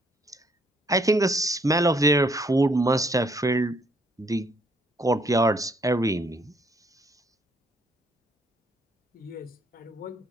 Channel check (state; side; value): normal; both; correlation 0.67